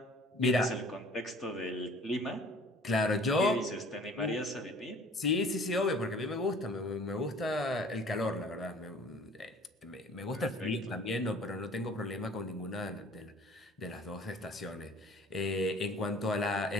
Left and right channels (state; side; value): normal; both; correlation 0.50